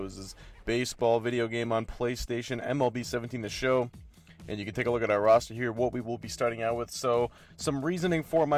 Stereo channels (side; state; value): both; identical; correlation 1.00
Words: baseball video game on PlayStation, MLB 17 The Show. And you can take a look at our roster here, what we will be starting out with. So, some reasoning for